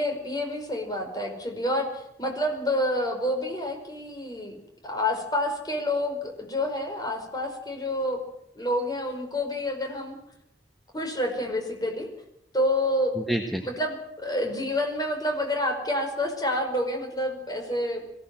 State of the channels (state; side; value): normal; both; correlation 0.32